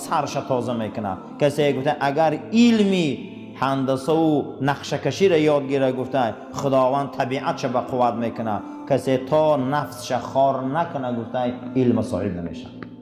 تازه میکنه. کسی گفته اگر علمی هندسه و نقشه کشی را یاد گیره گفته خداوند طبیعتش به قوت میکنه. کسی تا نفسش خار نکنه گفته علم صاحب نمیشه.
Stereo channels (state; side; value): identical; both; correlation 1.00